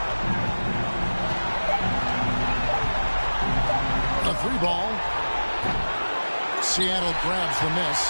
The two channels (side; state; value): both; inverted; correlation -1.00